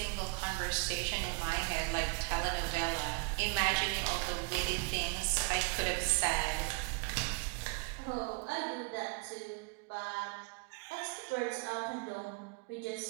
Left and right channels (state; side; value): quieter; left; 31.6 dB